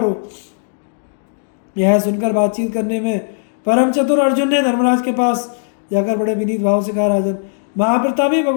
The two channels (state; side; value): silent; right; digital silence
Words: यह सुनकर बातचीत करने में परम चतुर अर्जुन ने धर्मराज के पास जाकर बड़े विनीत भाव से कहा, राजन, महाप्रतापी